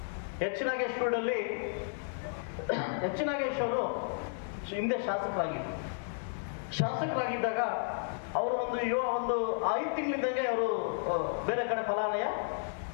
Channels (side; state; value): right; silent; digital silence